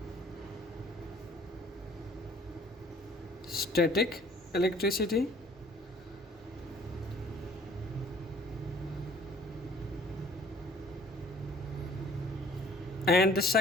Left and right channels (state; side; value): normal; both; correlation 0.55